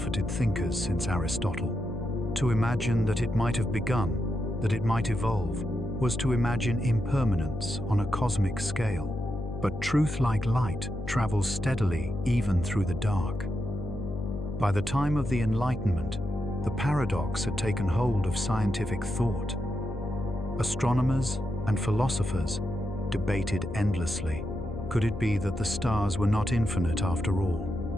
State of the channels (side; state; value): left; noise; hum, 8 dB below the sound